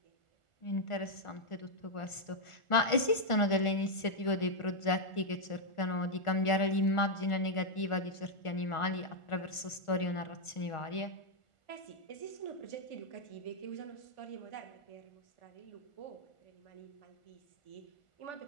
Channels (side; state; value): right; late; 1.4 ms